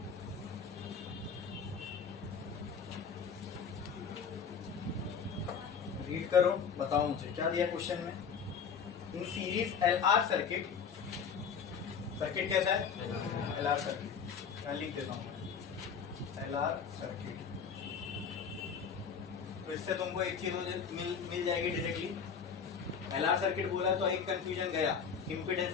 Read करो, बताओ मुझे क्या दिया क्वेश्चन में। In series LR circuit, circuit कैसा है? LR सर्किट, क्या लिख देता हूं LR सर्किट। तो इससे तुमको एक चीज मिल जाएगी डायरेक्टली। LR सर्किट बोला तो एक कंफ्यूजन गया,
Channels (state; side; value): quieter; right; 6.5 dB